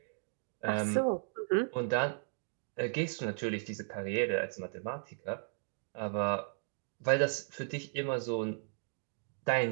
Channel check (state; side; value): silent; left; digital silence